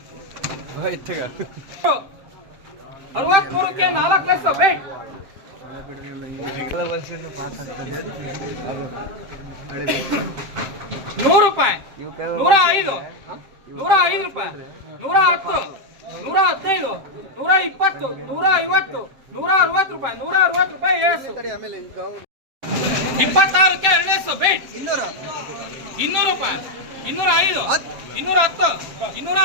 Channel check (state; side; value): late; left; 7.7 ms